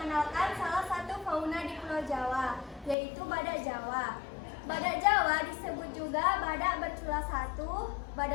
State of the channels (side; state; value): right; drops out; at 3.0 s